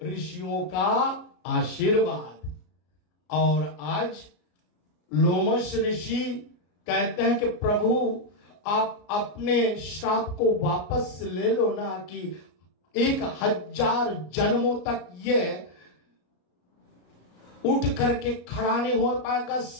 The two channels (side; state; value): right; late; 34 ms